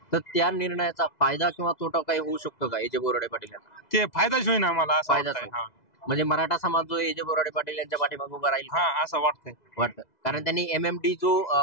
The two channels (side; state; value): right; late; 2.0 ms